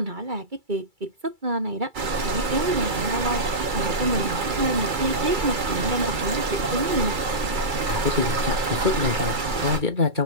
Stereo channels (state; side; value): late; left; 2.3 ms